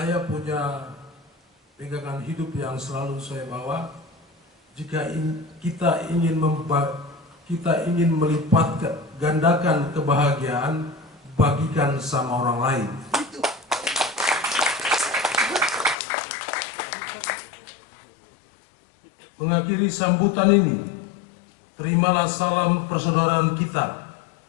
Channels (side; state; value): right; drops out; at 16.0 s